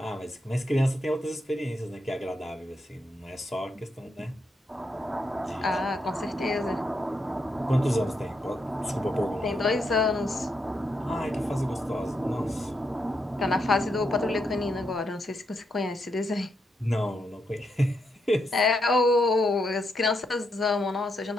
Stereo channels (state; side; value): normal; both; correlation 0.81